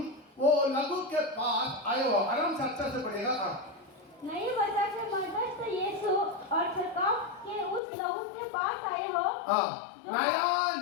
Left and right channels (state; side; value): drops out; right; at 7.8 s